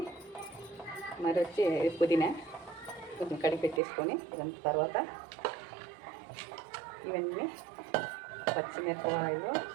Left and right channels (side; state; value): left; drops out; at 3.8 s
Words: మరి వచ్చి పుదీనా కొంచెం కడిగి పెట్టేసుకొని, ఇదంతా తర్వాత ఇవన్నీ పచ్చిమిరపకాయలు,